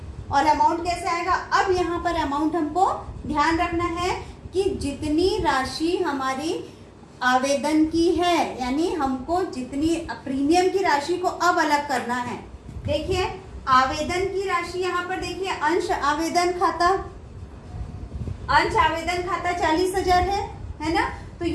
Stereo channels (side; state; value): both; identical; correlation 1.00